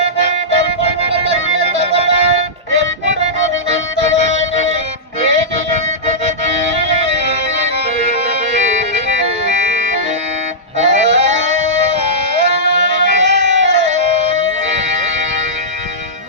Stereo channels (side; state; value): both; normal; correlation -0.15